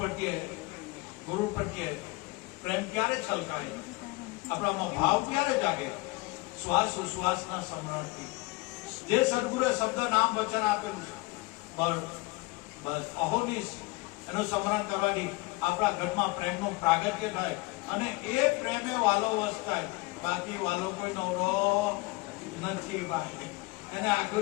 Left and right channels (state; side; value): quieter; right; 23.4 dB